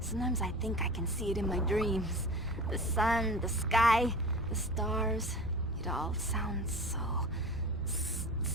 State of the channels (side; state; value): both; normal; correlation 0.35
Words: I think I can see it in my dreams. The sun, the sky, the stars. It all sounds so